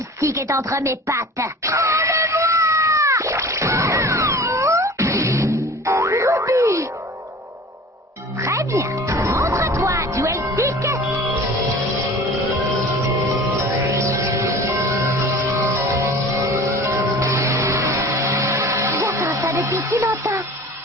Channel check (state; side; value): normal; both; correlation 0.41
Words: stick est entre mes pattes. Ruby! Très bien. Montre-toi, duel stick. J'attends ça depuis si longtemps.